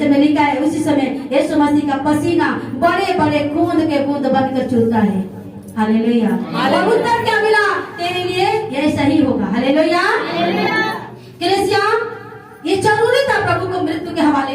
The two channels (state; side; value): identical; both; correlation 1.00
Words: में लिखा है उसी समय यीशु मसीह का पसीना बड़े बड़े खून के बूंद बनकर चूरता है। हालेलुया। और उत्तर क्या मिला? तेरे लिए यह सही होगा। हालेलुया। कलीसिया, ये जरूरी था प्रभु को मृत्यु के